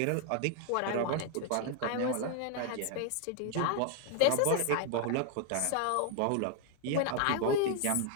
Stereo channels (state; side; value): different; both; correlation 0.00